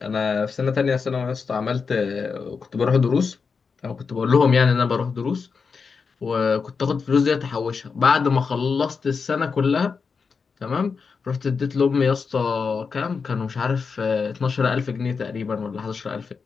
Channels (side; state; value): right; quieter; 5.3 dB